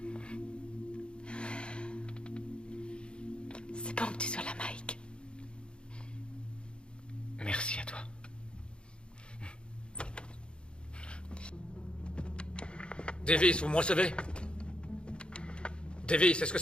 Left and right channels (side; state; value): right; late; 0.055 ms